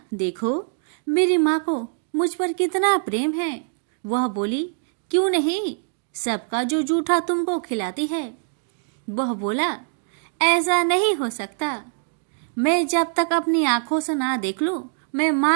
देखो मेरी माँ को मुझ पर कितना प्रेम है। वह बोली, क्यों नहीं, सबका जो जूठा तुमको खिलाती है। वह बोला, ऐसा नहीं हो सकता, मैं जब तक अपनी आंखों से ना देख लूं मैं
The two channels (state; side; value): silent; left; digital silence